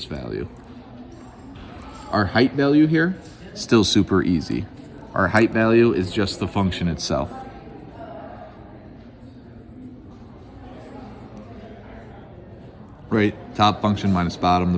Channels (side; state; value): both; identical; correlation 1.00